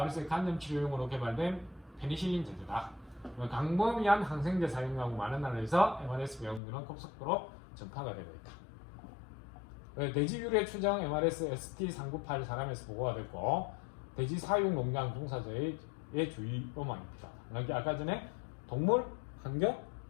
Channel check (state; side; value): drops out; right; at 6.6 s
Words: 간염 치료용으로 개발된 페니실린 제제다. 강범위한 항생제 사용하고 많은 나라에서 MRS 병균은 급속도로 전파가 되고 있다. 돼지 유래 추정 MRS ST398 사람에서 보고가 됐고, 돼지 사육 농장 종사자의 주의로만 필요하다. 그러니까 아까 전에 동물, 환경,